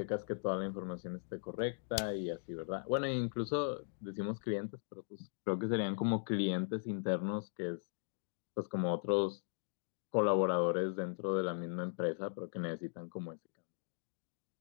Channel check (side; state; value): right; silent; digital silence